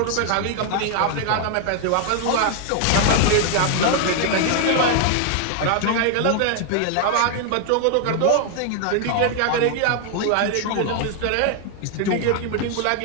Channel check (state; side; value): different; both; correlation 0.00